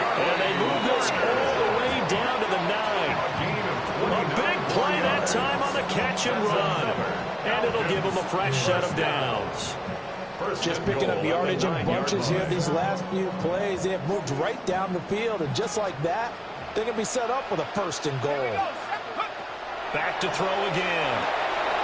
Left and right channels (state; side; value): identical; both; correlation 1.00